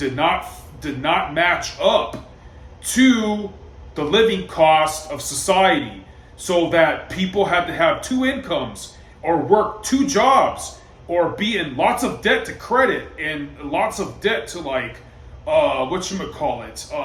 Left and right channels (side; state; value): both; identical; correlation 1.00